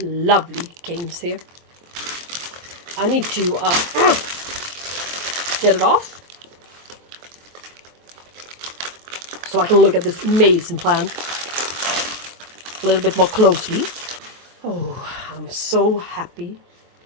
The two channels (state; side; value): late; left; 23 ms